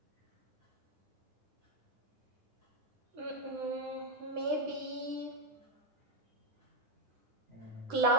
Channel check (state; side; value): late; left; 9.9 ms